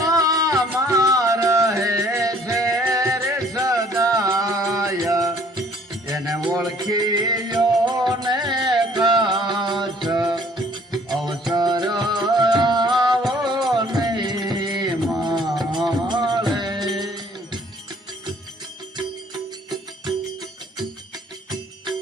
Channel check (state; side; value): normal; both; correlation 0.57